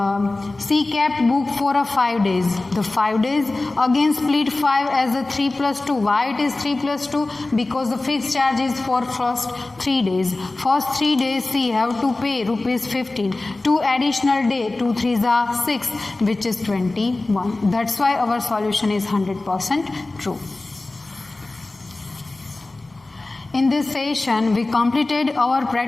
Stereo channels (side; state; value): right; quieter; 3.1 dB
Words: she kept book for 5 days. The 5 days again split 5 as a 3 plus 2. Why it is 3 plus 2? Because the fixed charge is for first 3 days. First 3 days she have to pay rupees 15. 2 additional day, 2 3s are 6, which is 21. That's why our solution is 100% true. In this session, we completed our